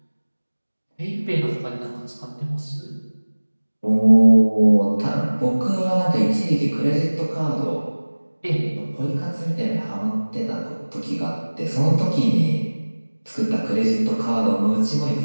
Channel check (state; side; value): inverted; both; correlation -1.00